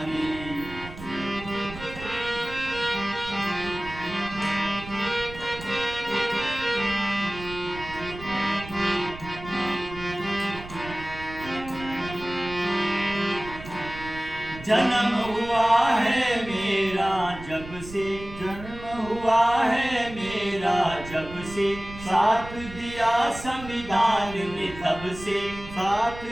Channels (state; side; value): noise; right; rumble, 13 dB below the sound